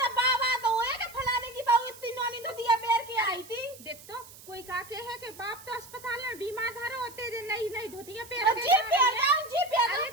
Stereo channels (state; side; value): noise; right; hiss, 19 dB below the sound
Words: तो बाबा तो होए के फलाने की बहू इतनी नोनी धुतिया पैर के आई थी। देख तो कोई का के है कि बाप तो अस्पताल में बीमार धरो होते जे नहीं धोतिया पैर के जी पैर जाओ जी पैर अरे